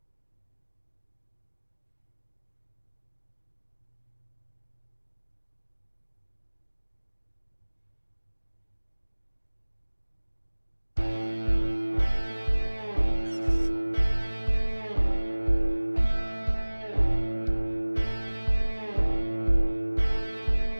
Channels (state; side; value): inverted; both; correlation -1.00